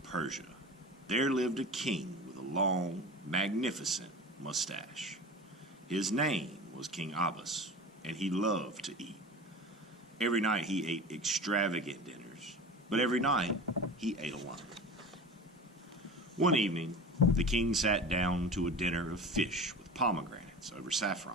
Persia, there lived a king with a long, magnificent mustache. His name was King Elvis, and he loved to eat. Every night he ate extravagant dinners, but every night he ate alone. One evening, the king sat down to a dinner of fish with pomegranates over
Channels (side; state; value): both; normal; correlation 0.34